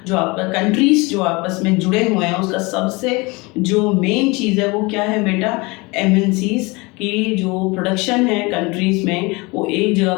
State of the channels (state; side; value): quieter; right; 25.5 dB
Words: जो आपस में जुड़े हुए हैं, उसका सबसे जो मेन चीज़ है वो क्या है बेटा, एमएनसीज की जो प्रोडक्शन है कंट्रीज में, वो एक जगह